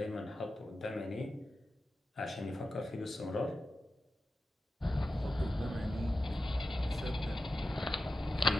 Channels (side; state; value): both; normal; correlation 0.92